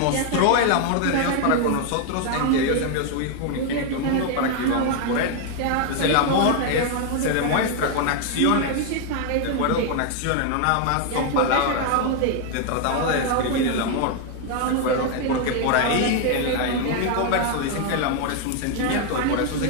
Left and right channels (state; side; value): different; both; correlation 0.01